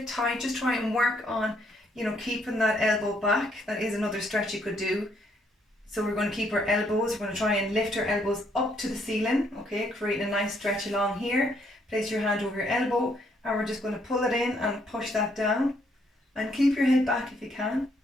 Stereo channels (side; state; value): both; normal; correlation 0.70